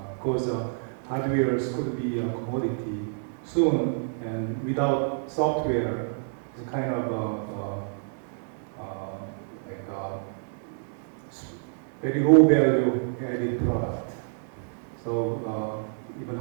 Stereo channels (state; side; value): silent; left; digital silence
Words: Because hardwares could be a commodity soon, and without software, it's kind of like a very low value added product. So even